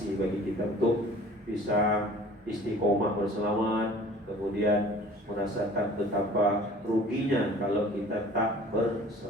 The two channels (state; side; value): normal; both; correlation 0.48